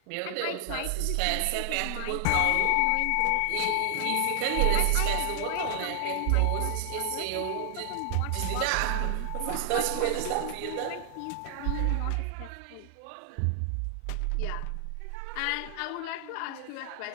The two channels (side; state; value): both; different; correlation 0.00